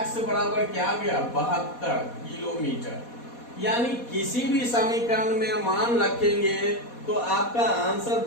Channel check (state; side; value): late; right; 4.2 ms